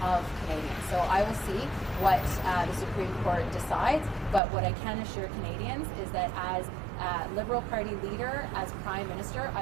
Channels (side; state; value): left; drops out; at 4.4 s